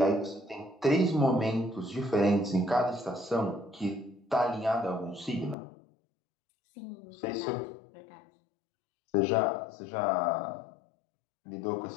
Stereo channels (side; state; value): right; drops out; at 5.6 s